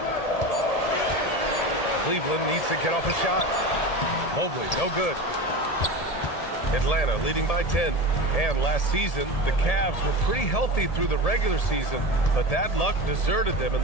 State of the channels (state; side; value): late; right; 1.8 ms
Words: Cleveland needs to get off a shot. Mobley, no good. Atlanta leading by 10. And last season, the Cavs were pretty healthy through the regular season, but that luck deserted them in